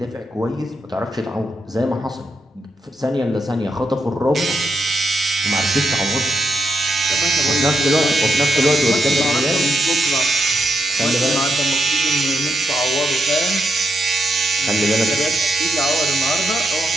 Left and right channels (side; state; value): both; normal; correlation 0.81